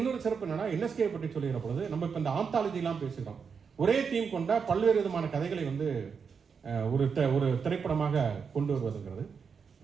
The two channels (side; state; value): left; quieter; 6.0 dB